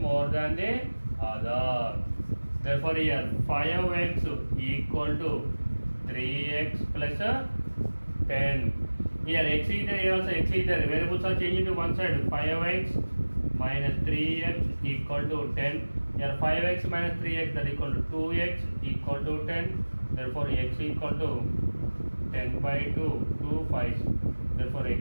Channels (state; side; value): inverted; both; correlation -1.00